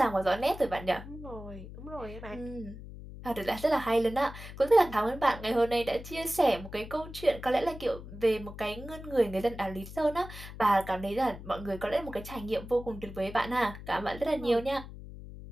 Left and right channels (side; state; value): left; noise; hum, 13 dB below the sound